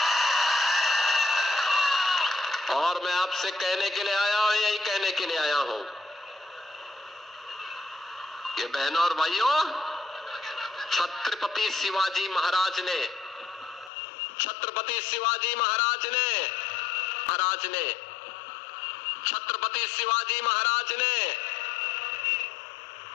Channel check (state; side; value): drops out; right; at 13.9 s